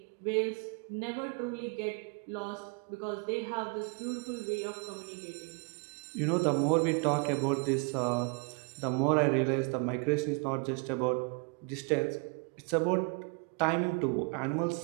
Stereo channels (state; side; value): quieter; left; 33.1 dB